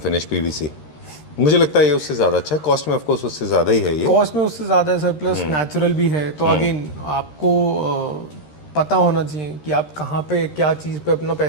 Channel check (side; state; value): right; late; 13 ms